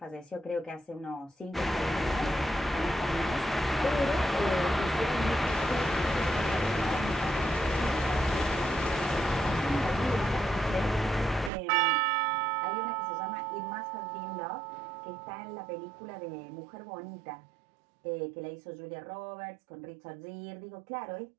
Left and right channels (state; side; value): drops out; left; at 11.5 s